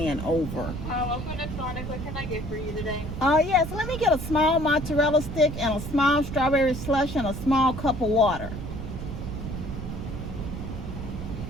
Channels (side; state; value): right; noise; rumble, 7 dB below the sound